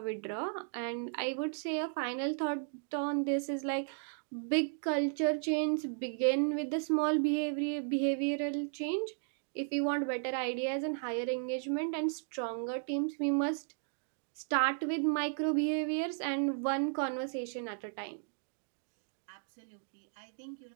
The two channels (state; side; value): silent; left; digital silence